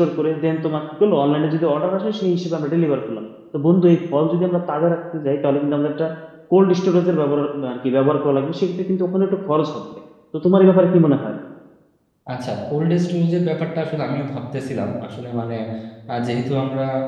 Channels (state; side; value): identical; both; correlation 1.00